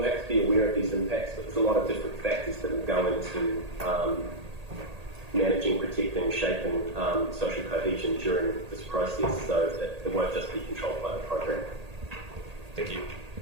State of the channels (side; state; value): left; late; 1.8 ms